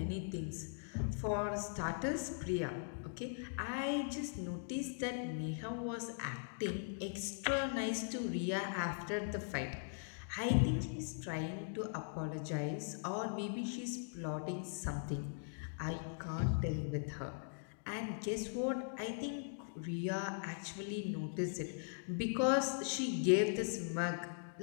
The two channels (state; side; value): silent; right; digital silence